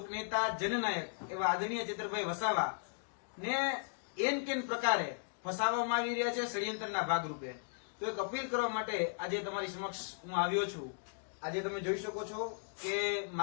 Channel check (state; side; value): silent; right; digital silence